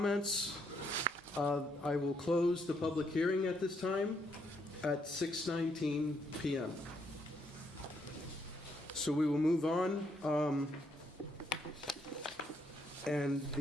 I will close the public hearing at this time at 6:19 p.m. So we will move on. And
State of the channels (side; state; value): both; normal; correlation 0.74